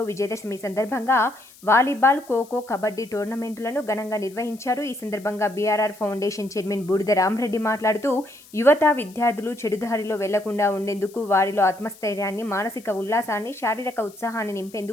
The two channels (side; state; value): left; noise; hiss, 24 dB below the sound